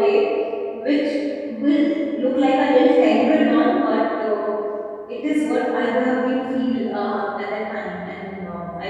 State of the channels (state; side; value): identical; both; correlation 1.00